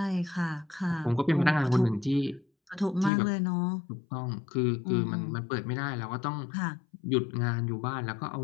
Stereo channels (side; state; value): right; drops out; at 3.1 s